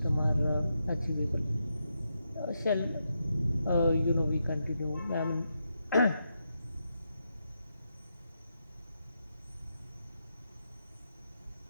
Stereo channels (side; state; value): both; inverted; correlation -0.84